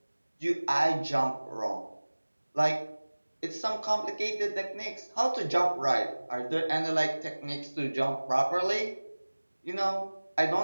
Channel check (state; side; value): inverted; both; correlation -1.00